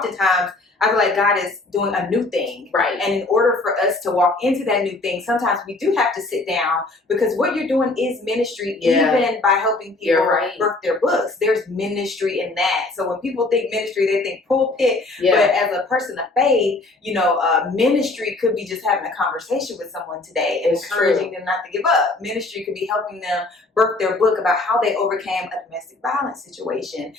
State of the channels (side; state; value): right; quieter; 3.1 dB